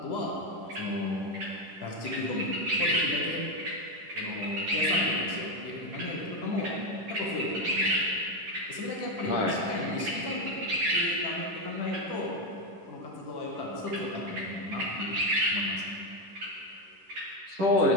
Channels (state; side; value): late; left; 10 ms